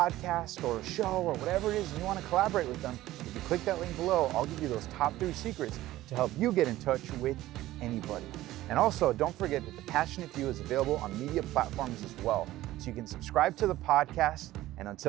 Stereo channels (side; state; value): left; quieter; 15.7 dB